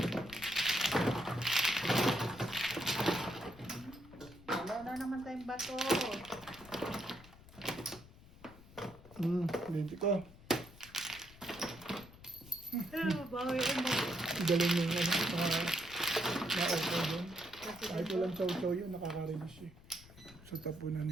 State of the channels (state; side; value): noise; left; rumble, 20 dB below the sound